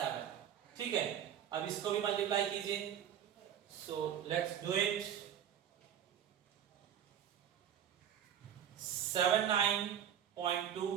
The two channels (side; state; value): left; quieter; 9.5 dB